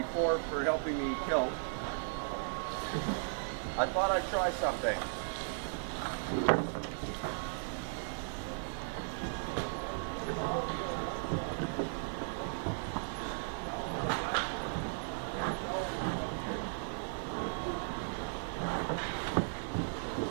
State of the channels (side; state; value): left; silent; digital silence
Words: for helping me tilt, I thought I'd try something.